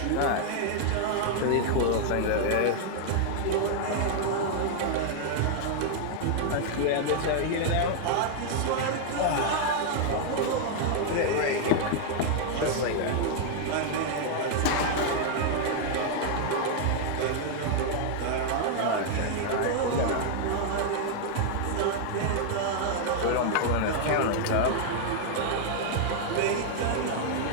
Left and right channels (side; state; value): both; different; correlation -0.01